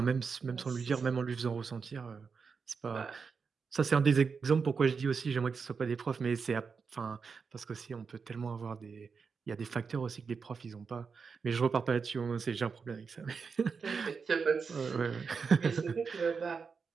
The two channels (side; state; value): left; quieter; 5.4 dB